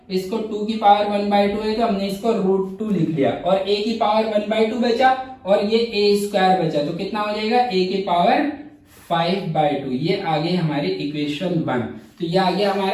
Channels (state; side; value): identical; both; correlation 1.00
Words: इसको 2 की पावर 1/2 है तो हमने इसको √2 लिख लिया, और a की पावर 1/2 बचा, और ये a स्क्वायर बचा, तो कितना हो जाएगा a की पावर 5/2। ये आ गई हमारी इक्वेशन 1। तो ये आ गया